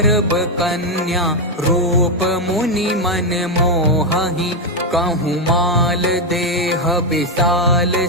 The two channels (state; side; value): normal; both; correlation 0.04